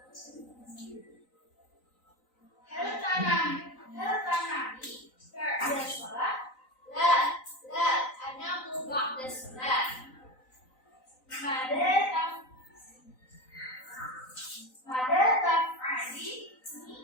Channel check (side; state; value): right; late; 3.9 ms